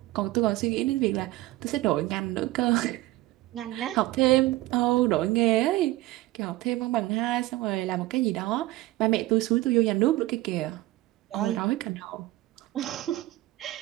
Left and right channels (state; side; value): quieter; left; 17.7 dB